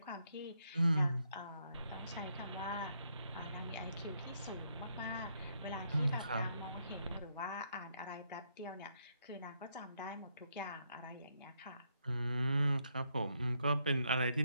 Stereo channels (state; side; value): inverted; both; correlation -0.77